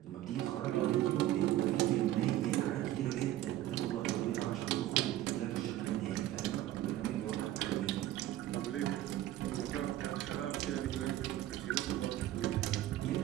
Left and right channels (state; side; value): quieter; left; 14.0 dB